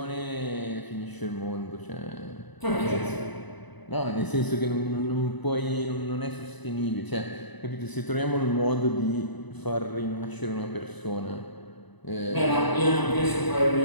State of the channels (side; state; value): right; late; 1.0 ms